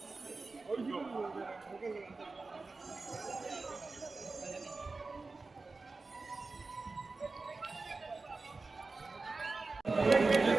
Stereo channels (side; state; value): left; quieter; 3.8 dB